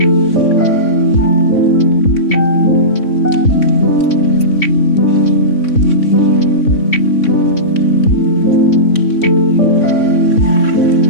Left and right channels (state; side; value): late; right; 3.6 ms